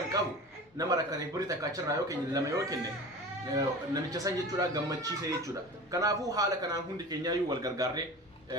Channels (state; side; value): normal; both; correlation 0.35